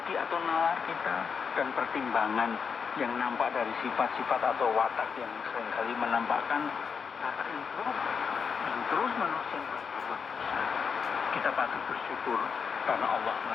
atau nalar kita, dan pertimbangan yang nampak dari sifat-sifat atau watak yang seringkali menampakkan kata yang buruk. dan terus menerus yang berbuat dosa. Kita patut bersyukur karena Allah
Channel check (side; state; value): right; quieter; 6.1 dB